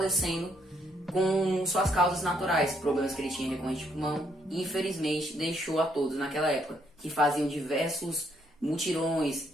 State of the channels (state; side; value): normal; both; correlation 0.72